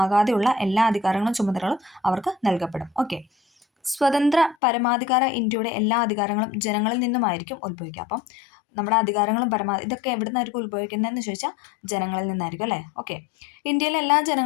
എല്ലാ അധികാരങ്ങളും ചുമതലകളും അവർക്ക് നൽകപ്പെടും. ഓക്കെ, സ്വതന്ത്ര പരമാധികാര ഇന്ത്യയുടെ എല്ലാ അധികാരങ്ങളും ജനങ്ങളിൽ നിന്നുമായിരിക്കും ഉത്ഭവിക്കുക. അപ്പം നമ്മുടെ അധികാരങ്ങളും ഇതൊക്കെ എവിടെ നിന്നായിരിക്കും ഉത്ഭവിക്കുന്നതെന്ന് ചോദിച്ചാൽ ജനങ്ങളിൽ നിന്നായിരിക്കും അല്ലേ. ഓക്കെ. ഇന്ത്യയിലെ എല്ലാ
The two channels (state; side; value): drops out; right; at 4.5 s